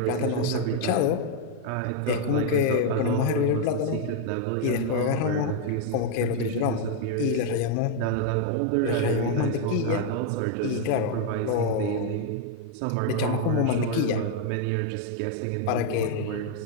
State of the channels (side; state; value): both; different; correlation 0.00